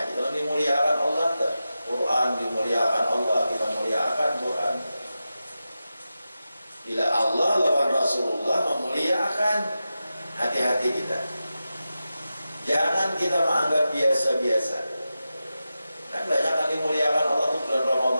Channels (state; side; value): inverted; both; correlation -0.92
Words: aja kalau dimuliakan Allah, tak? Quran dimuliakan Allah, kita muliakan Quran. Bila Allah lawan Rasulullah memuliakan, hati-hati kita. Jangan kita menganggap biasa-biasa. Kan banyak yang dimuliakan Allah itu bulan